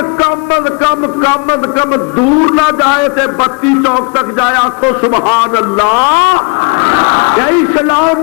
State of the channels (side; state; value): right; quieter; 34.8 dB